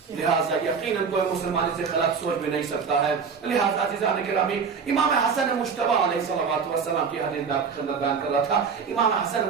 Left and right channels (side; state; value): left; quieter; 5.9 dB